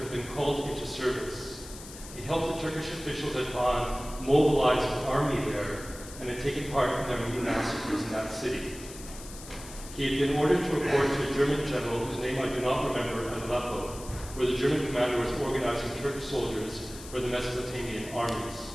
been called into service. He helped the Turkish officials at Van mobilize an army there and had taken part in their many massacres in that city. He had been ordered to report to a German general whose name I do not remember at Aleppo, where the German commander was organizing Turkish soldiers for the Mesopotamian armies.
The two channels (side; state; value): left; noise; hiss, 15 dB below the sound